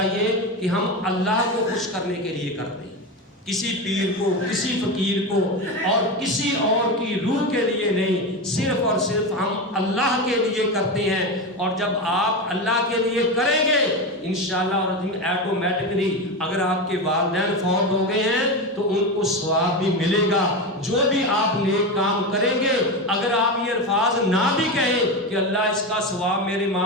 کہ ہم اللہ کو خوش کرنے کے لیے کرتے ہیں، کسی پیر کو، کسی فقیر کو اور کسی اور کی روح کے لیے نہیں، صرف اور صرف ہم اللہ کے لیے کرتے ہیں۔ اور جب آپ اللہ کے لیے کریں گے انشاءاللہ اور ایٹومیٹکلی اگر آپ کے والدین فوت ہو گئے ہیں تو ان کو ثواب بھی ملے گا، جو بھی آپ نیک کام کریں گے، اگر آپ یہ الفاظ نہ بھی کہیں کہ اللہ اس کا ثواب میرے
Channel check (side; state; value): both; normal; correlation 0.19